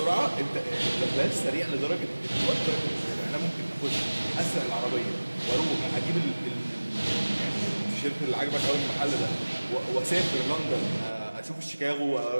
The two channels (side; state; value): both; inverted; correlation -1.00